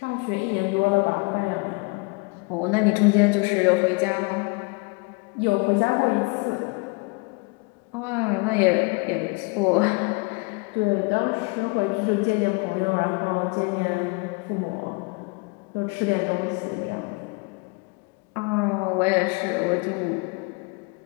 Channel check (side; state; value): right; quieter; 29.7 dB